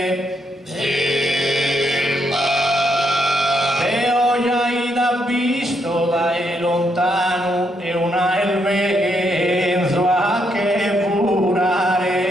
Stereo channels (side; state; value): both; normal; correlation 0.77